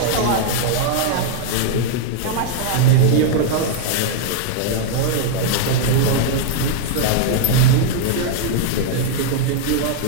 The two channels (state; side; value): different; both; correlation -0.01